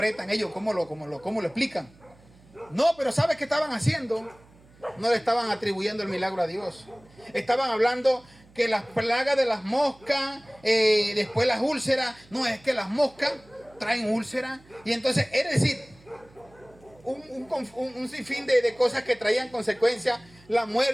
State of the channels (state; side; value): noise; right; hum, 27 dB below the sound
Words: ellos? ¿Cómo lo explican? No, pero ¿sabes qué estaban haciendo? No le estaban atribuyendo el milagro a Dios. Estaban hablando que las plagas de las moscas, después las úlceras. No, es que las moscas traen úlceras. Y entonces, es decir, un sinfín de cosas que traían consecuencias. La